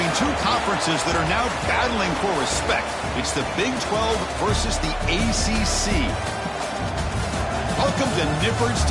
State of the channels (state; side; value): identical; both; correlation 1.00